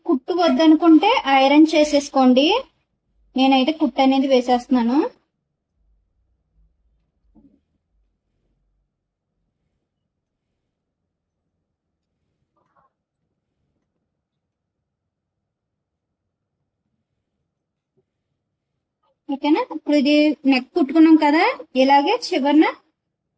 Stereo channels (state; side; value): identical; both; correlation 1.00